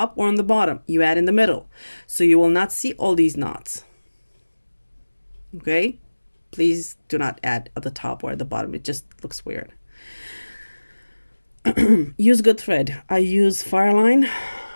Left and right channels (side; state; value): both; inverted; correlation -1.00